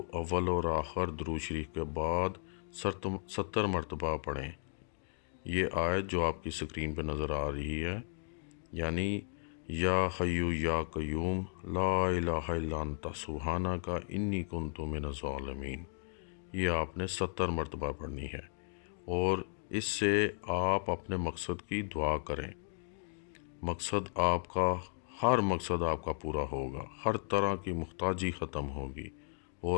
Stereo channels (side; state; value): right; silent; digital silence